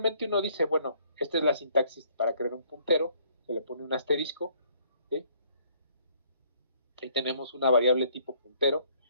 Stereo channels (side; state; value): both; inverted; correlation -0.62